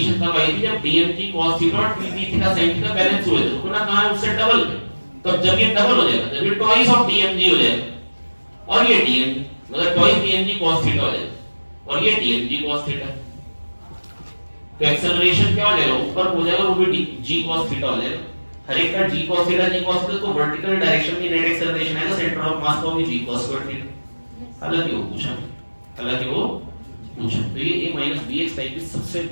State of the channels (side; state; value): both; inverted; correlation -1.00